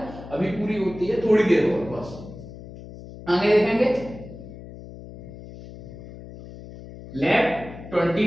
अभी पूरी होती है, थोड़ी देर और बस। आगे देखेंगे, left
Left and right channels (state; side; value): noise; left; hum, 15 dB below the sound